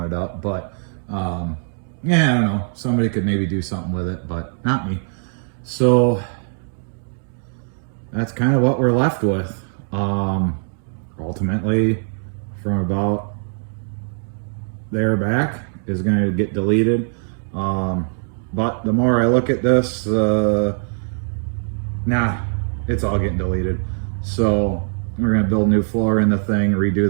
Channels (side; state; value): left; silent; digital silence